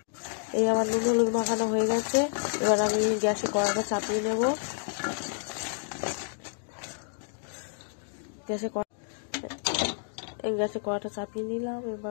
এই আমার নুন হলুদ মাখানো হয়ে গেছে, এবার আমি গ্যাসে কড়াটা চাপিয়ে নেব। গ্যাসে কড়াটা চাপিয়ে নিলাম,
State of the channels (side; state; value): right; silent; digital silence